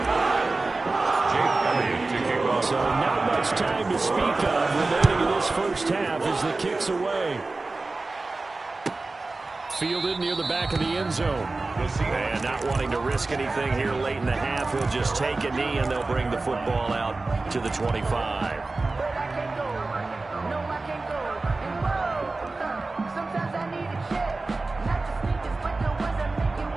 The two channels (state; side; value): quieter; left; 3.4 dB